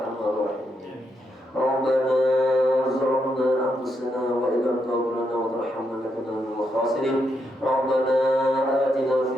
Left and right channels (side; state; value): both; normal; correlation 0.80